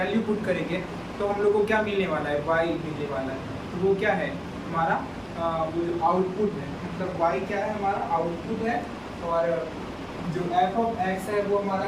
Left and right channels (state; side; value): identical; both; correlation 1.00